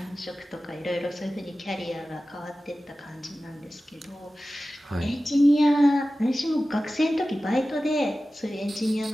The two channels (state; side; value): normal; both; correlation 0.95